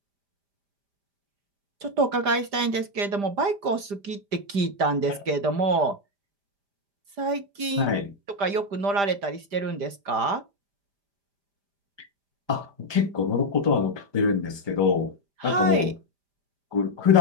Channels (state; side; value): late; left; 5.0 ms